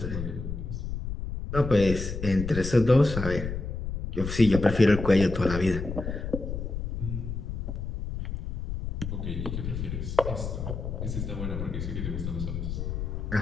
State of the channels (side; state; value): left; noise; rumble, 4 dB below the sound